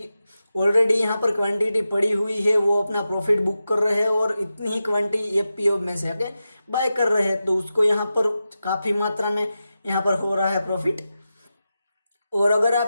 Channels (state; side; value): inverted; both; correlation -0.92